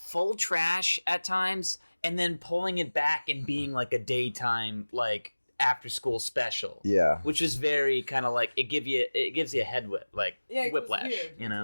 trash at times and then pulling it back and being like a daytime like after school special. Yeah. Which is very kind of like it gives you a head whip like Yeah, it was whiplash. weird. You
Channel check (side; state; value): both; inverted; correlation -1.00